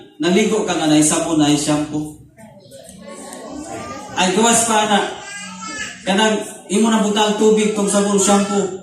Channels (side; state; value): both; identical; correlation 1.00